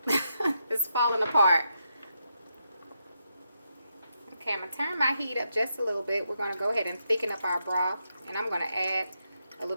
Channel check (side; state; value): both; inverted; correlation -0.82